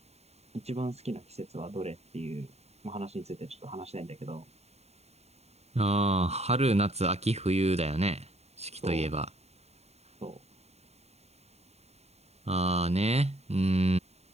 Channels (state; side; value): late; left; 0.31 ms